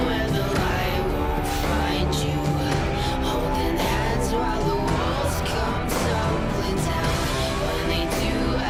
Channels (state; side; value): identical; both; correlation 1.00